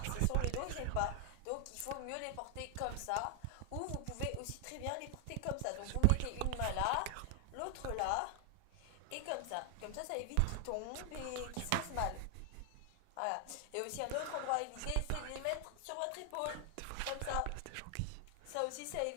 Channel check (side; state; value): both; different; correlation 0.00